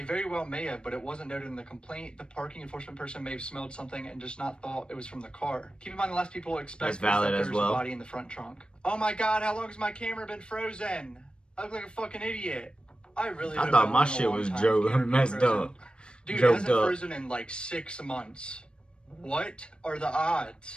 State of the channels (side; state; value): right; late; 0.054 ms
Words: very well may have, but it wasn't noted in the complaint. The parking enforcement person may have smelled something and just not thought it was from the car. Keep in mind the last people expect is that there's a body in the front trunk. Oh my god, how long has my camera been frozen? I look like a fucking idiot. I thought my shit was messed up. Dude, it hasn't frozen in like 6 months. What are the